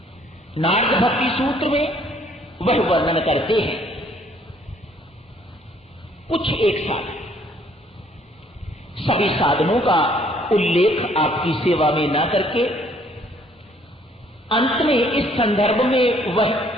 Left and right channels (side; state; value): both; normal; correlation 0.63